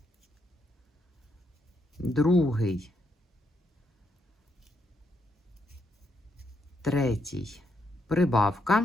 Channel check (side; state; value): both; normal; correlation 0.78